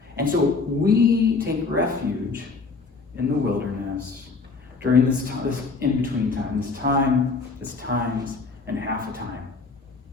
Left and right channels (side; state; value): right; quieter; 4.3 dB